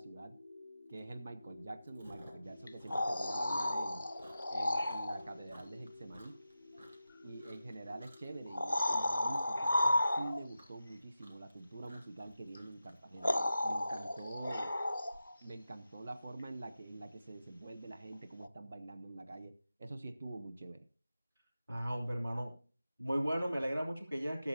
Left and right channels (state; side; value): inverted; both; correlation -0.92